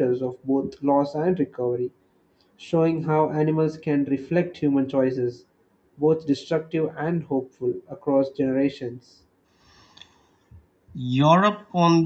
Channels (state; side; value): identical; both; correlation 1.00